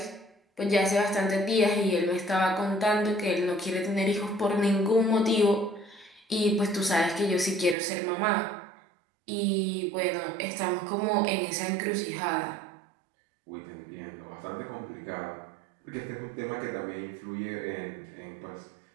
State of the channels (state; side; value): drops out; left; at 7.8 s